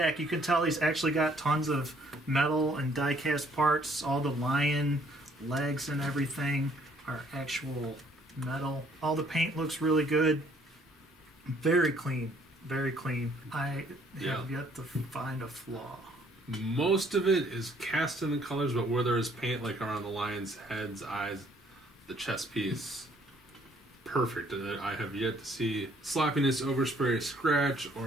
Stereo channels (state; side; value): normal; both; correlation 0.63